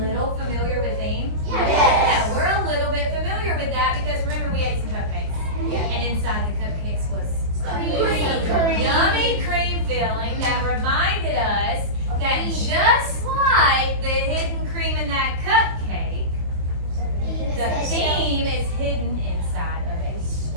little familiar with theme? Yes. Yeah, we're a little bit familiar with that because remember we ate some cupcakes. Yeah. And inside the cupcakes was Cream. yummy cream filling that reminded us that just like the hidden cream in that cupcake, the theme is hidden inside of a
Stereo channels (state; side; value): late; left; 23 ms